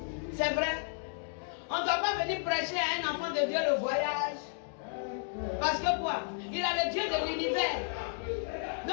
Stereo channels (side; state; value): right; silent; 56 dB below the other